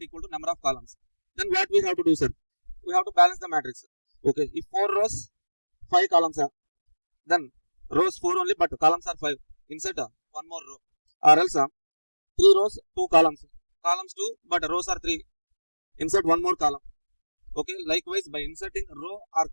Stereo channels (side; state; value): both; inverted; correlation -1.00